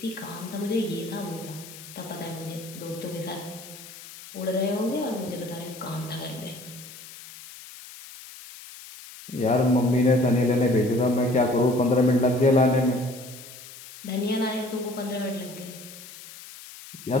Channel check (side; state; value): left; noise; hiss, 16 dB below the sound